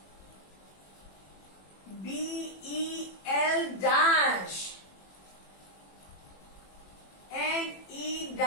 B-E-L dash. N-E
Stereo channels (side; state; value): right; late; 21 ms